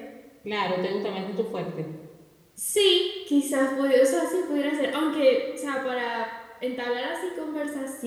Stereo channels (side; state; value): both; identical; correlation 1.00